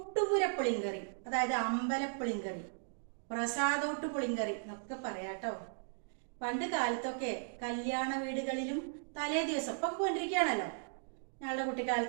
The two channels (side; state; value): left; silent; digital silence